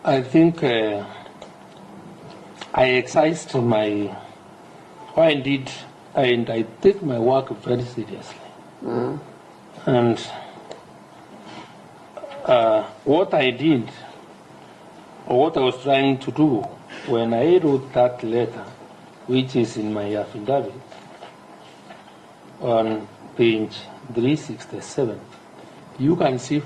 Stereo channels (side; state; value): both; identical; correlation 1.00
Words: I think I exercised my, and I take my work very seriously. Mm-hmm. And what I did, or what I was trying to do when I wrote that letter, which is in my affidavit on page 367, you can see